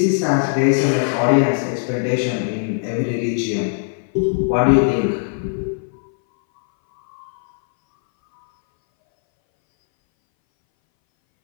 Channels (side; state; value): right; silent; 62 dB below the other